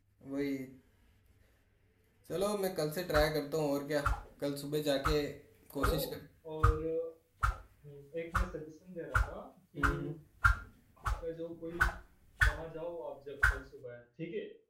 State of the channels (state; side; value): identical; both; correlation 1.00